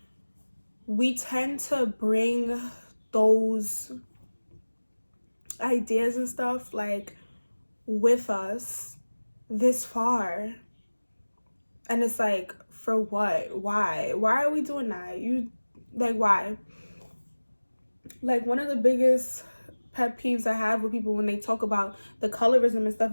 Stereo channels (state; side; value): inverted; both; correlation -1.00